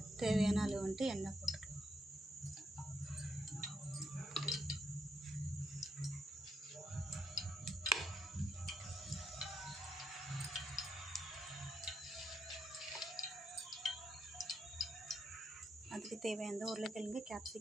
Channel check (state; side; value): normal; both; correlation 0.77